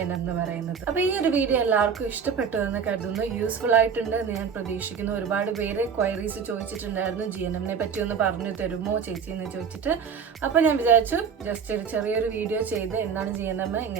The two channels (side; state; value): left; quieter; 6.6 dB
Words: എന്ന് പറയുന്നത്. അപ്പോൾ ഈ ഒരു വീഡിയോ എല്ലാവർക്കും ഇഷ്ടപ്പെട്ടു എന്ന് കരുതുന്നു, യൂസ്ഫുൾ ആയിട്ടുണ്ട് എന്ന് ഞാൻ പ്രതീക്ഷിക്കുന്നു. ഒരുപാട് പേര് ക്വയറീസ് ചോദിച്ചിട്ടുണ്ടായിരുന്നു, GNM-നെ പറ്റി ഒന്ന് പറഞ്ഞു തരുമോ ചേച്ചി എന്ന് ചോദിച്ചിട്ട്. അപ്പോൾ ഞാൻ വിചാരിച്ചു ജസ്റ്റ് ഒരു ചെറിയൊരു വീഡിയോ ചെയ്ത് എന്താണ് GNM,